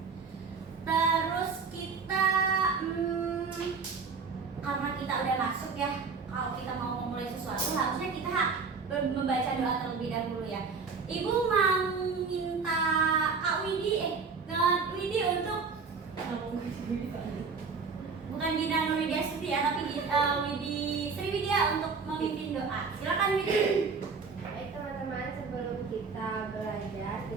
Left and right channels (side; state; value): left; quieter; 5.1 dB